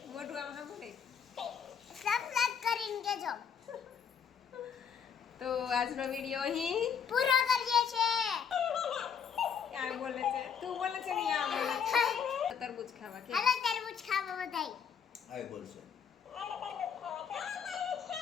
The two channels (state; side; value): quieter; right; 7.3 dB